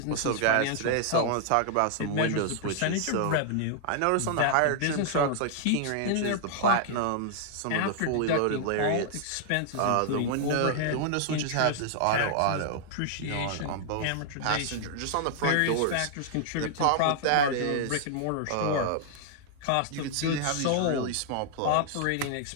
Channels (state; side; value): different; both; correlation 0.00